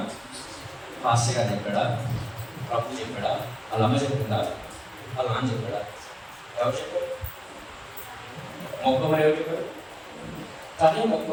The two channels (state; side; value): identical; both; correlation 1.00